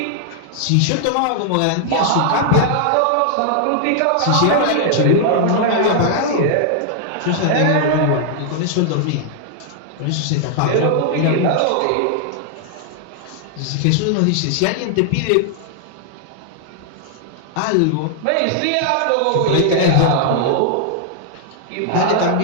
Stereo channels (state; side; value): different; both; correlation -0.01